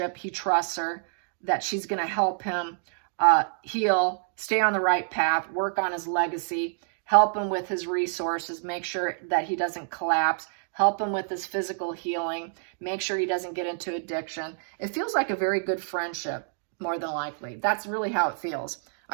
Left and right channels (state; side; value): silent; left; digital silence